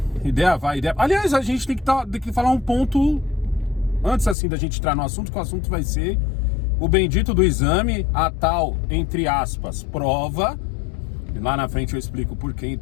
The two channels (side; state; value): right; drops out; at 4.4 s